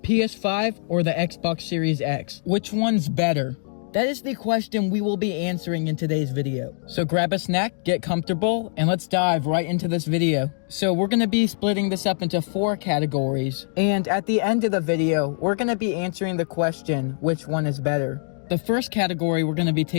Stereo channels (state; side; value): silent; right; digital silence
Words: or the Xbox Series X? Which one's better? That is the question we will be answering in today's video. So grab a snack, get comfortable, and let's dive right into this video. So we're going to be splitting this up into 4 categories. And at the end of the video, we're going to be answering the question, which one is better? The first category we're going to be